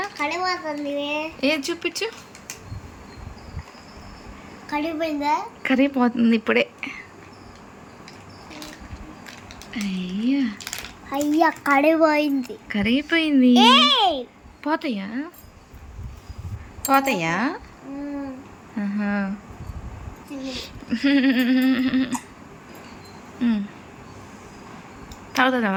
ఏది చూపించు. కరిగిపోతుంది ఇప్పుడే. అయ్యా కడిపోయింది. కరిగిపోయింది. పోతాయా? పోతాయా?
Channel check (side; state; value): both; identical; correlation 1.00